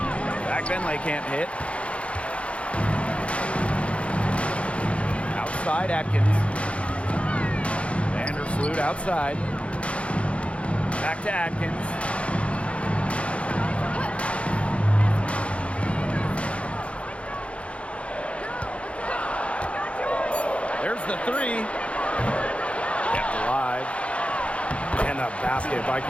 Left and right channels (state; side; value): late; right; 0.061 ms